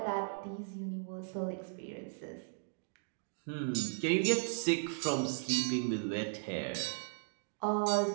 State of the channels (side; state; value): left; silent; digital silence